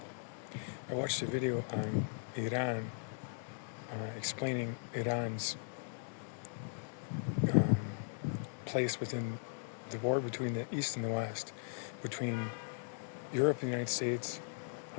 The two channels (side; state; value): right; silent; digital silence